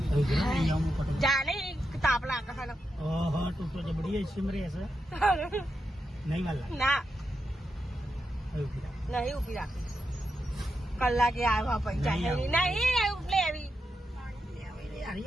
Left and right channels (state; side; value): normal; both; correlation 0.86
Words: જાને તાપ લાગે છે. ઓહો તું તો જબડી સિમરે છે નહીં વાલા ના નહીં ઉભી રાખી કલાકે આવ્યા પૈસા નહીં લેવી